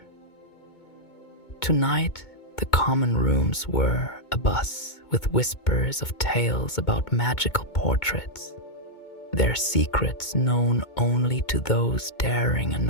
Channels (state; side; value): late; right; 2.2 ms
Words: Tonight, the common rooms were abuzz with whispers of tales about magical portraits, their secrets known only to those daring